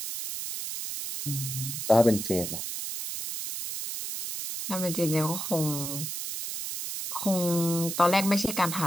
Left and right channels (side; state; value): right; noise; hiss, 5 dB below the sound